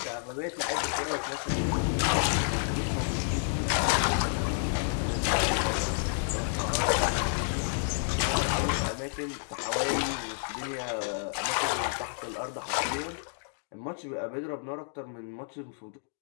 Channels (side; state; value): right; silent; digital silence